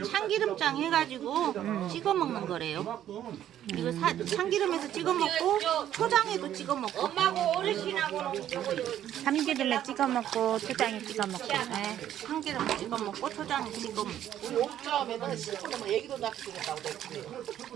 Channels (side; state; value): left; quieter; 11.3 dB